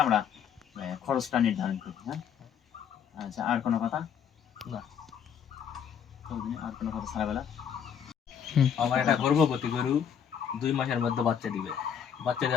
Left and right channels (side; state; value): right; quieter; 8.1 dB